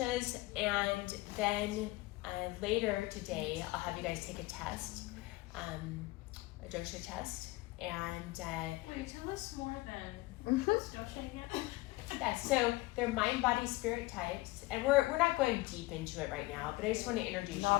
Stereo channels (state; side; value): quieter; right; 20.7 dB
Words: and then later today I'll have you guys take a test, a dosha test, and Wait, tell us more than what's dosha again? yeah, so they're mind, body, spirit types, and we're not going deep into it right now, but I just want to introduce